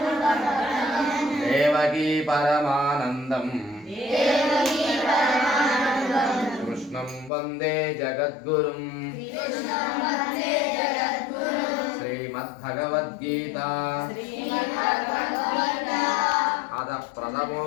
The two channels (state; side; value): drops out; right; at 7.3 s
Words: देवकी परमानन्दं कृष्णं वन्दे जगद्गुरुं। श्रीमद्भगवद्गीता अथ